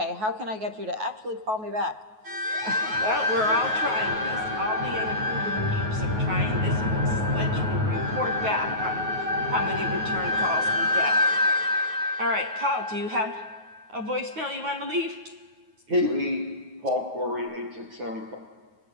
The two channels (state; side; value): late; left; 9.3 ms